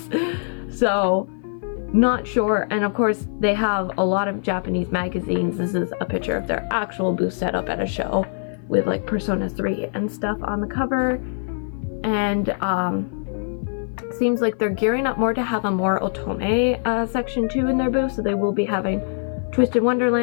So, not sure. And of course, they have a lot of Japanese magazines. This is a picture of their actual booth setup at a show with like Persona 3 and stuff on the cover. And seems like they're gearing up more to have a more otome section too in their booth. So they will be having Twisted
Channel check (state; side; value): silent; right; 56 dB below the other